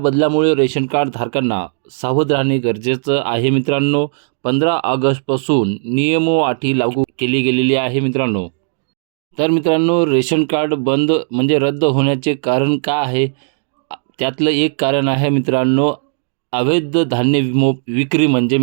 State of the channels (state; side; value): silent; left; digital silence